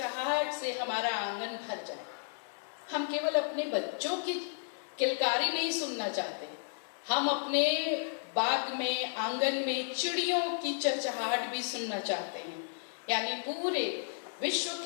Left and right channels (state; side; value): silent; right; 56 dB below the other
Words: से हमारा आंगन भर जाए। हम केवल अपने बच्चों की किलकारी नहीं सुनना चाहते, हम अपने बाग में, आंगन में चिड़ियों की चहचहाहट भी सुनना चाहते हैं। यानी पूरे विश्व